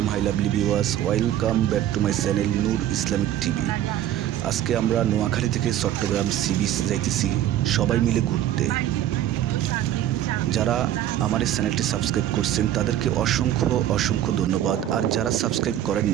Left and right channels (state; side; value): quieter; left; 11.9 dB